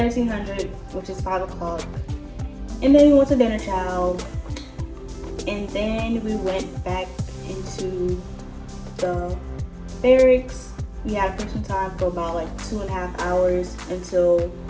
which is 5 o'clock. And then we went to dinner chow. And then we went back into the barracks. We had person time for about like 2.5 hours until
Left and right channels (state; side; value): identical; both; correlation 1.00